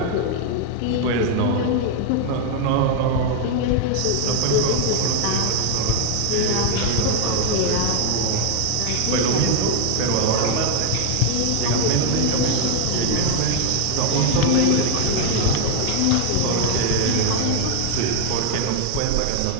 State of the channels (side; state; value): both; different; correlation 0.00